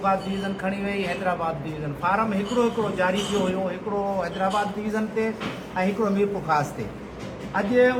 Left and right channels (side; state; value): both; identical; correlation 1.00